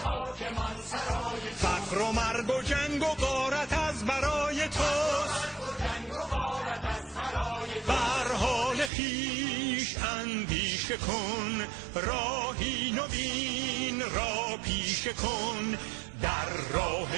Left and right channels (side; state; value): left; drops out; at 8.9 s